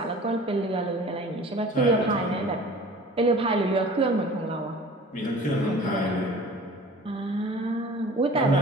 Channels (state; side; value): normal; both; correlation 0.44